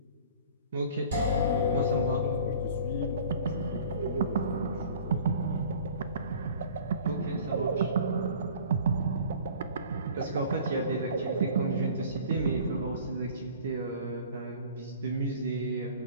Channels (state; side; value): inverted; both; correlation -0.46